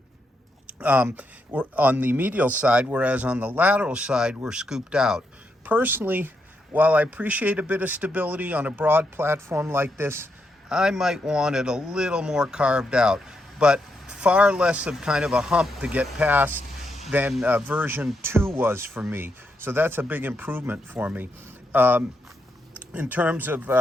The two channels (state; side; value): normal; both; correlation 0.81